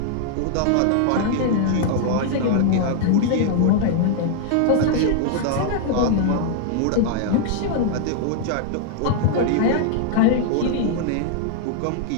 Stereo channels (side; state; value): both; different; correlation -0.01